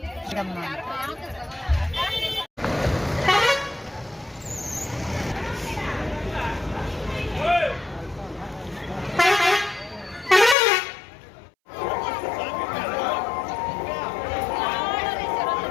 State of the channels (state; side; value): drops out; right; at 10.6 s